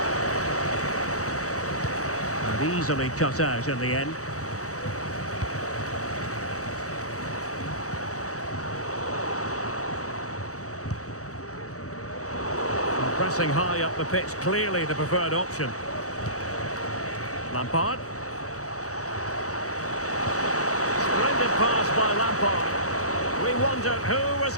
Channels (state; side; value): late; right; 0.65 ms